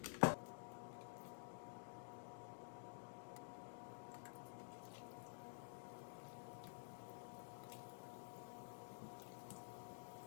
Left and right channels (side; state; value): right; silent; digital silence